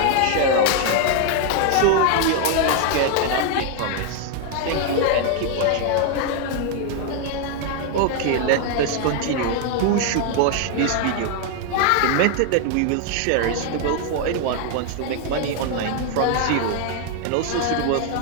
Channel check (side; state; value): both; different; correlation 0.00